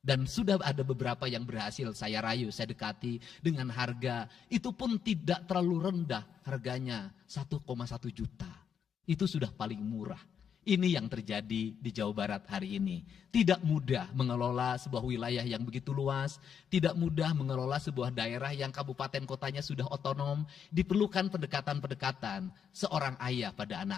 sudah ada beberapa yang berhasil saya rayu, saya dekati dengan harga. Itu pun tidak terlalu rendah, harganya 1,1 juta. Itu sudah paling murah. Ini yang terjadi di Jawa Barat hari ini. Tidak mudah mengelola sebuah wilayah yang begitu luas. Tidak mudah mengelola sebuah daerah yang kabupaten kotanya sudah otonom. Diperlukan pendekatan-pendekatan seorang ayah pada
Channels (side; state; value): right; quieter; 7.7 dB